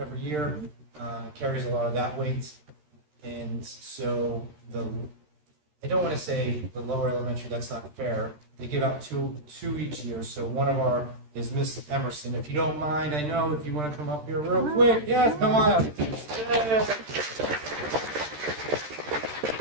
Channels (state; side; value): late; left; 13 ms